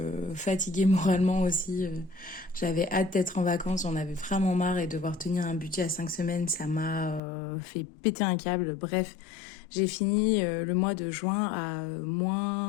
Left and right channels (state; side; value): drops out; right; at 7.2 s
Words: moralement aussi. J'avais hâte d'être en vacances, j'en avais vraiment marre et devoir tenir un budget à 5 semaines, ça m'a fait péter un câble. Bref, j'ai fini le mois de juin à